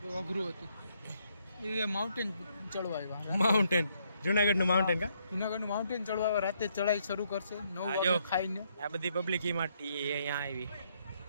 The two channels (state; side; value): inverted; both; correlation -0.73